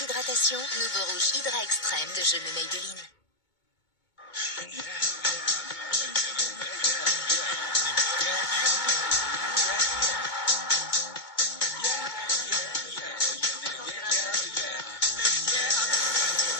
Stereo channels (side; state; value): right; late; 2.2 ms